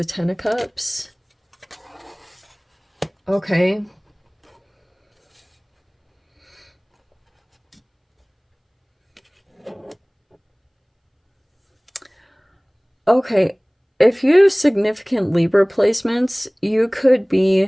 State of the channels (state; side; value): identical; both; correlation 1.00